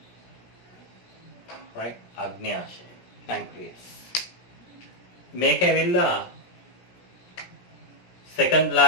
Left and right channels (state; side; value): late; right; 17 ms